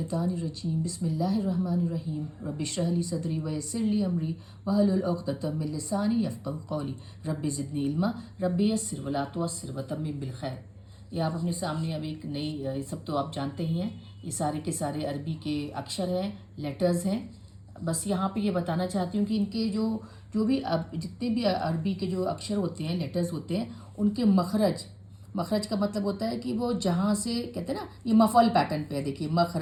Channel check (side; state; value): both; identical; correlation 1.00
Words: बिस्मिल्लाहिर्रहमानिर्रहीम रब्बिश्रह ली सदरी वयस्सिर ली अमरी वहलुल उक़दतम मिन लिसानी यफ़क़हू क़ौली रब्बि ज़िदनी इल्मा रब्बि यस्सिर वला तुअस्सिर वतम्मिम बिल खैर। ये आप अपने सामने अब एक नई, ये सब तो आप जानते ही हैं, ये सारे के सारे अरबी के अक्षर हैं, लेटर्स हैं। बस यहाँ पे ये बताना चाहती हूँ कि इनके जो जो भी अब जितने भी अरबी के जो अक्षर होते हैं, लेटर्स होते हैं, उनके मखरज, मखरज का मतलब होता है कि वो जहाँ से कहते हैं ना, ये मफल पैटर्न पे है। देखिए